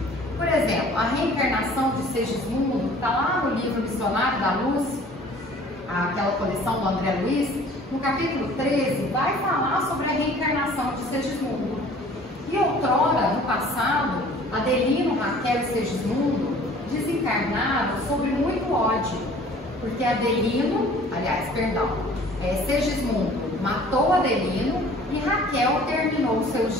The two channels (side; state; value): both; normal; correlation 0.50